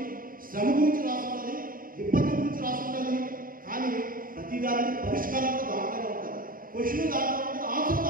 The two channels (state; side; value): late; left; 0.41 ms